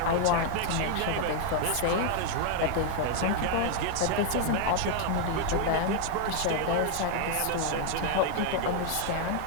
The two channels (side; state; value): both; different; correlation 0.00